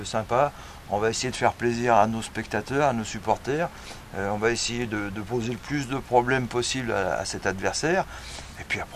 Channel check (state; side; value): identical; both; correlation 1.00